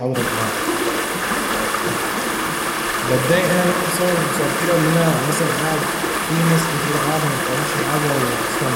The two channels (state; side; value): identical; both; correlation 1.00